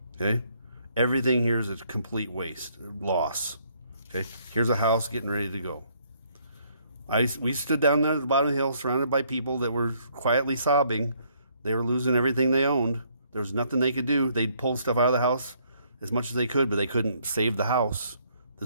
okay? Everything here is a complete waste, loss. Okay, here's a house getting ready to go. We stood down there at the bottom of the hill surrounded by people that were quietly sobbing. They were losing everything they owned. There was nothing they could do. They'd pull stuff out of the house as much as they could, but they couldn't save the house.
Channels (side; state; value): both; inverted; correlation -0.68